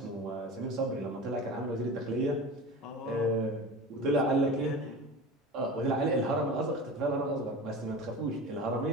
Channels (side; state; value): both; normal; correlation 0.32